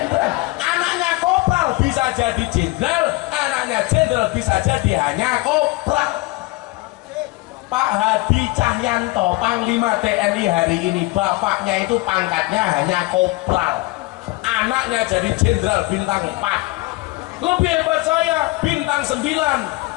Anaknya kopral bisa jadi jenderal, anaknya jenderal bisa jadi hanya kopral. Pak Hadi Cahyanto, Panglima TNI hari ini, bapaknya itu pangkatnya hanya kopral. Anaknya jadi jenderal bintang 4. Lebih hebat saya, bintang 9.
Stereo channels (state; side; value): quieter; right; 21.5 dB